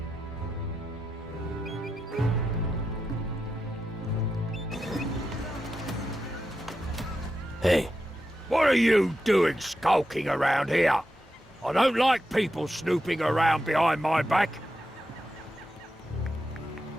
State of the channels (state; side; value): normal; both; correlation 0.87